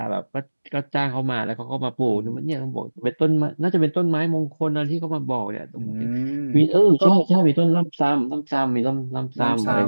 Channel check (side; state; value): both; inverted; correlation -1.00